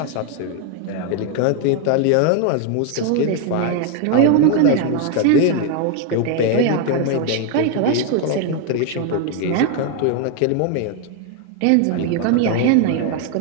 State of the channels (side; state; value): both; different; correlation 0.01